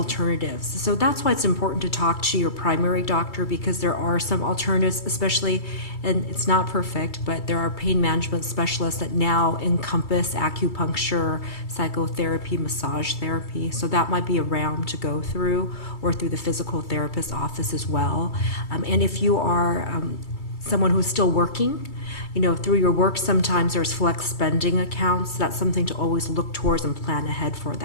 So that's why it's important to talk to your primary doctor, because there are some alternatives, especially, and it's not perfect, but there are pain management specialists that now encompass acupuncture, psychotherapy, massage therapy. So that might be a realm to go through, or through the physical therapist office as well. And if you are someone who's still working, you know, through your work, sometimes there's flex spending accounts. That's something to always look towards and plan ahead for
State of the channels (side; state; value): right; late; 2.3 ms